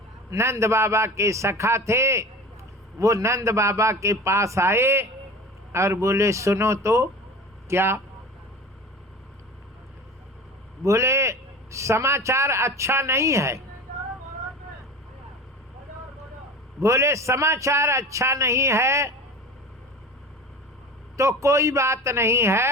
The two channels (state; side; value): normal; both; correlation 0.35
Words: नंद बाबा के सखा थे, वो नंद बाबा के पास आए और बोले सुनो तो। क्या? बोले समाचार अच्छा नहीं है। बोले समाचार अच्छा नहीं है तो कोई बात नहीं